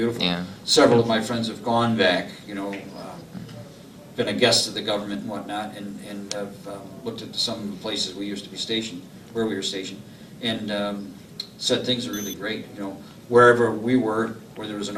Yeah. Several of my friends have gone back, you know, been a guest of the government and whatnot, and have looked at some of the places we used to be stationed, where we were stationed, and said things are really great. You know, wherever we were, where there was an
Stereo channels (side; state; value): both; identical; correlation 1.00